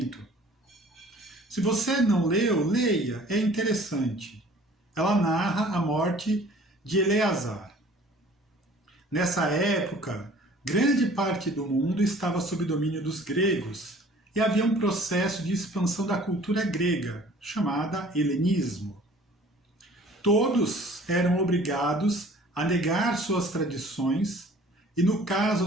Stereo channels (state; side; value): normal; both; correlation 0.51